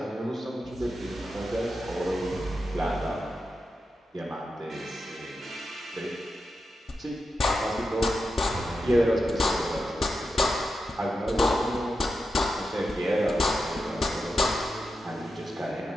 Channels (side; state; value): both; normal; correlation 0.89